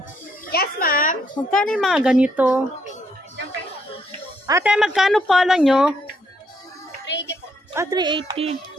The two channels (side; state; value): both; normal; correlation 0.73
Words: Yes, ma'am. Magkano yung mga ganito? Ate, magkano pala nyo? 380 po. 380.